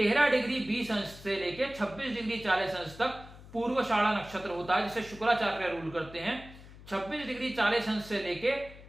डिग्री 20 अंश से लेकर 26 डिग्री 40 अंश तक पूर्वाषाढ़ा नक्षत्र होता है, जिसे शुक्राचार्य रूल करते हैं। 26 डिग्री 40 अंश से लेकर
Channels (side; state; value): left; noise; hum, 18 dB below the sound